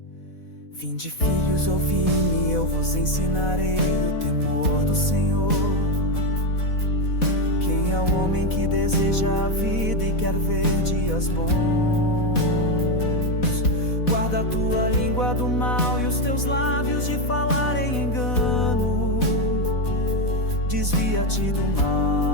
Vinde, filhos, ouvi-me, eu vos ensinarei o temor do Senhor. Quem é o homem que deseja a vida e quer ver dias bons? Guarda a tua língua do mal e os teus lábios de falar em engano. Desvia-te do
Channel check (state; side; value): late; right; 4.1 ms